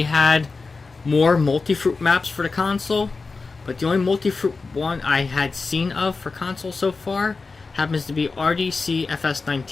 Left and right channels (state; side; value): quieter; right; 4.2 dB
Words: had more multi-fruit maps for the console, but the only multi-fruit one I had seen of for console so far happens to be RDC